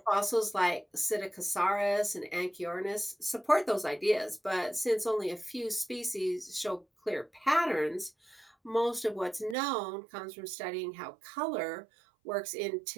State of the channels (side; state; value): left; drops out; at 9.6 s